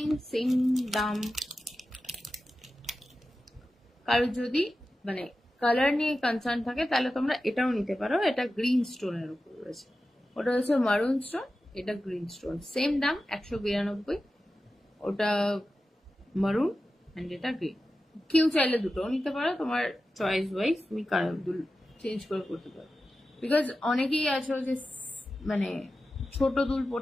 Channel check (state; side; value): normal; both; correlation 0.93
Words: সেম দাম। কারো যদি মানে কালার নিয়ে কনসার্ন থাকে তাহলে তোমরা এটাও নিতে পারো। এটা গ্রিন স্টোনের উপর রয়েছে, ওটা হচ্ছে মারুন স্টোন, এটা গ্রিন স্টোন। সেম দাম 192, ওটা মারুন অ্যান্ড এটা গ্রিন। কেউ চাইলে দুটোও নিতে পারো, তোমার চয়েস ওয়াইজ তুমি কালার চেঞ্জ করে করতে পারো। বিকজ অনেকেই আছো যে মানে ছোট দুল